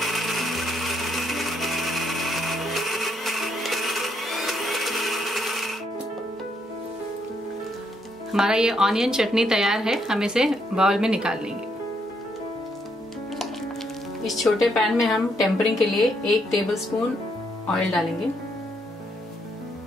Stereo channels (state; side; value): normal; both; correlation 0.74